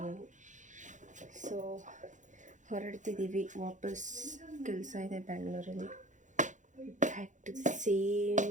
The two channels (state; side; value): late; left; 0.36 ms